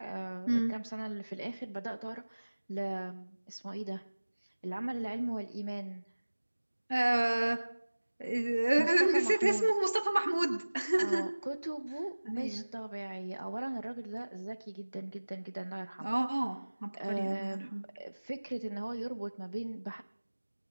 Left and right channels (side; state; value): both; inverted; correlation -1.00